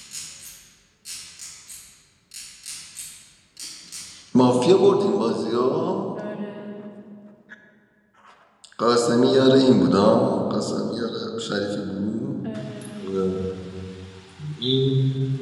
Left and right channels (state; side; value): identical; both; correlation 1.00